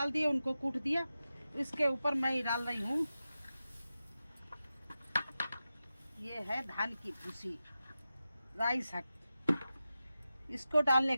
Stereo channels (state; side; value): inverted; both; correlation -0.92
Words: दिए, उनको कूट दिया। इसके ऊपर मैं डाल रही हूँ, ये है धान की भूसी, राई साग। इसको डालने